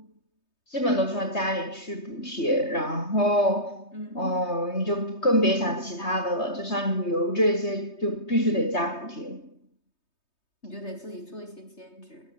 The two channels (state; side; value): late; right; 3.2 ms